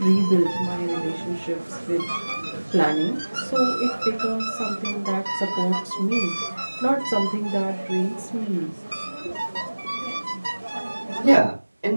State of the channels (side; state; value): both; inverted; correlation -1.00